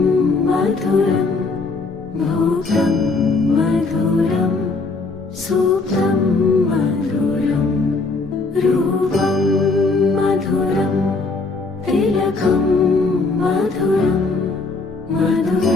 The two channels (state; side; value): quieter; right; 3.8 dB